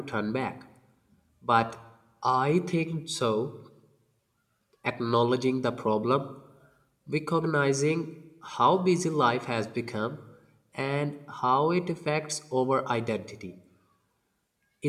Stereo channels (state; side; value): identical; both; correlation 1.00